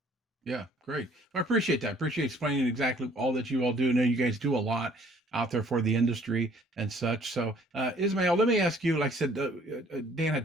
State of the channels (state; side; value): normal; both; correlation 0.58